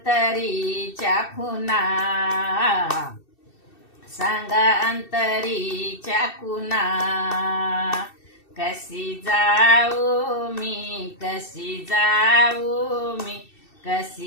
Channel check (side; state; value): right; late; 2.7 ms